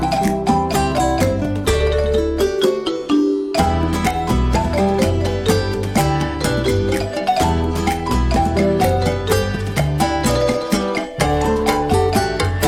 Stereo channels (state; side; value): identical; both; correlation 1.00